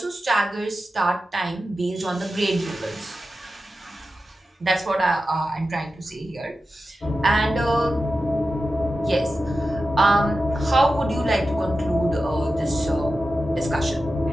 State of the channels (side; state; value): both; normal; correlation 0.92